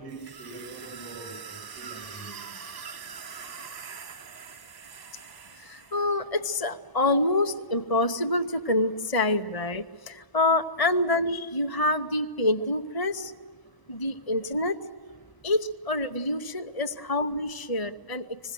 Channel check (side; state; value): right; late; 1.0 ms